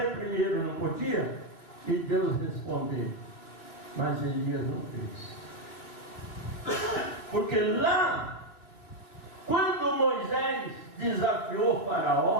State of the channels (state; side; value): late; right; 2.9 ms